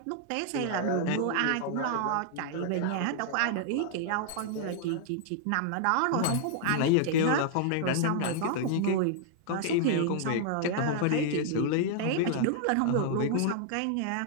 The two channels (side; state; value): both; different; correlation -0.01